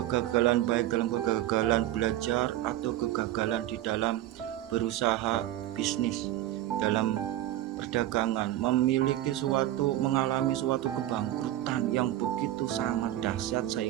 baik dalam kegagalan belajar atau kegagalan di dalam berusaha bisnis, dalam perdagangan, mengalami suatu kebangkrutan yang begitu sangat dahsyat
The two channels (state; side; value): quieter; left; 13.9 dB